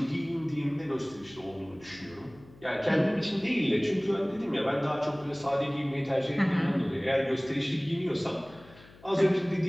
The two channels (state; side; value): noise; left; hum, 23 dB below the sound